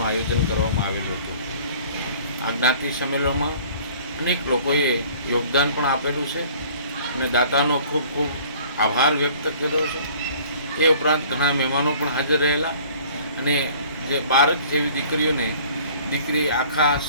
આયોજન કરવામાં આવેલું હતું. આ જ્ઞાતિ સંમેલનમાં અનેક લોકોએ યોગદાન પણ આપેલું છે અને દાતાનો ખૂબ ખૂબ આભાર વ્યક્ત કર્યો છે. એ ઉપરાંત ઘણા મહેમાનો પણ હાજર રહેલા અને જે બાળક જેવી દીકરી આખા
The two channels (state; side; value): inverted; both; correlation -0.51